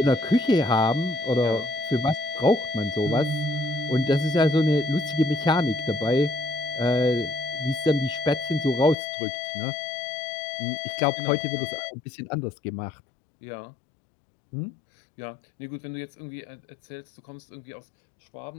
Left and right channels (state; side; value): drops out; right; at 9.0 s